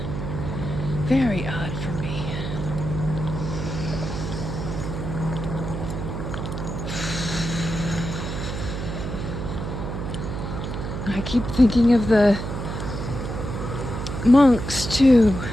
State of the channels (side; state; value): right; noise; hum, 5 dB below the sound